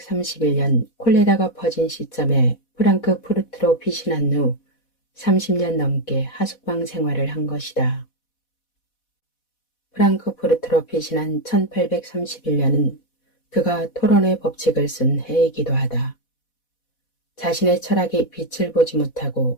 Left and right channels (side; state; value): right; late; 4.1 ms